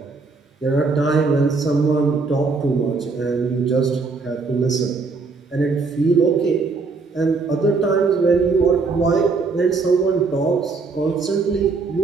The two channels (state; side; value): quieter; left; 4.2 dB